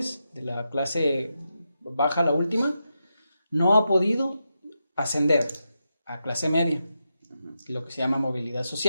de la clase baja, la última, no ha podido ascender a clase media, lo que se llama movilidad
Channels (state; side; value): inverted; both; correlation -0.87